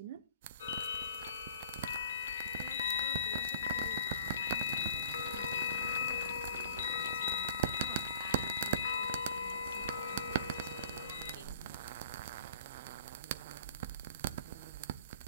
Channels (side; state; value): both; inverted; correlation -0.48